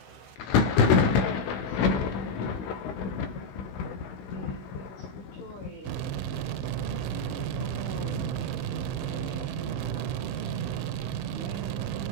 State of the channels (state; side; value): late; right; 16 ms